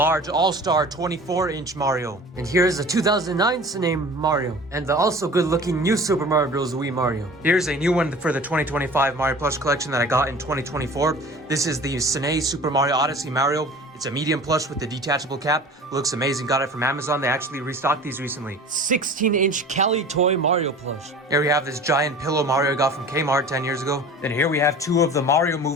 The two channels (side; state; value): both; normal; correlation 0.41